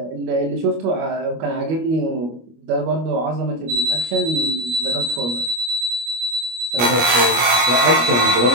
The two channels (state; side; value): late; left; 25 ms